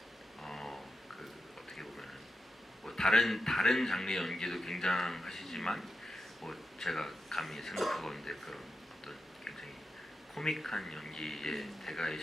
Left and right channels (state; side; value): normal; both; correlation 0.88